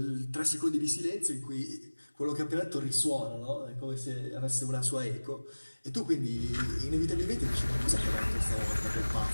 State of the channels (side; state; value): both; inverted; correlation -1.00